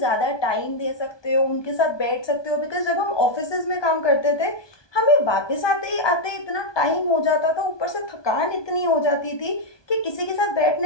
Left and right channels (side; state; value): right; late; 1.2 ms